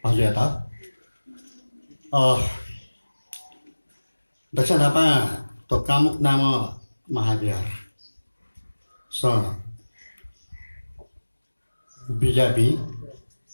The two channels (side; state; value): both; inverted; correlation -1.00